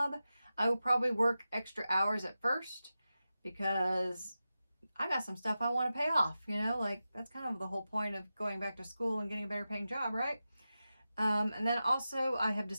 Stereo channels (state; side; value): inverted; both; correlation -0.93